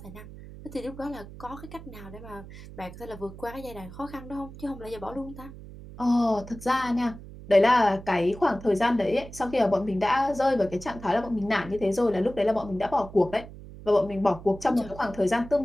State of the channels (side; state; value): right; noise; hum, 15 dB below the sound